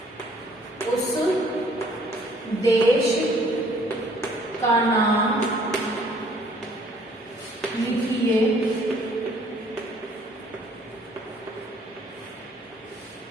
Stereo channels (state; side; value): normal; both; correlation 0.60